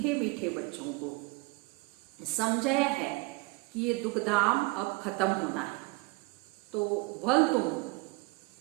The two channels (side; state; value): left; quieter; 24.9 dB